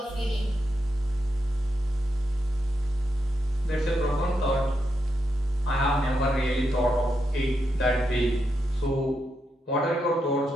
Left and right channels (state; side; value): normal; both; correlation 0.84